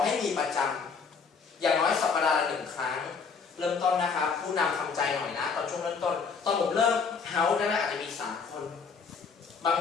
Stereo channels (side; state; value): right; quieter; 5.4 dB